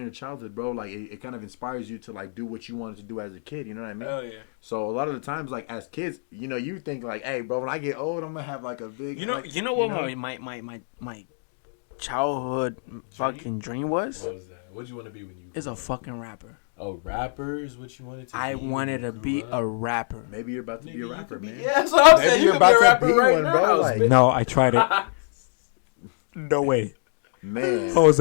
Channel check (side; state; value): right; silent; digital silence